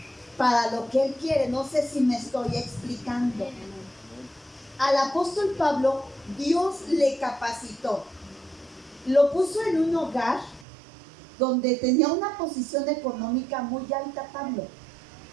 para lo que Él quiere. No sé si me estoy explicando. Al apóstol Pablo, Dios le capacitó, lo puso en un hogar donde tenía una posición económica muy alta.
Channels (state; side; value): drops out; left; at 10.7 s